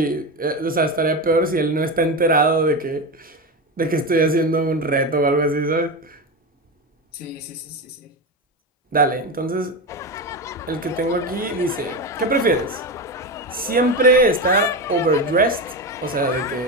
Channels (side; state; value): both; normal; correlation 0.18